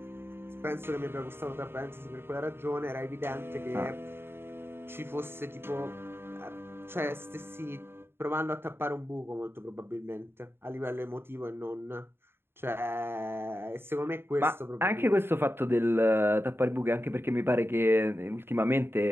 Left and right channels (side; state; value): left; late; 0.11 ms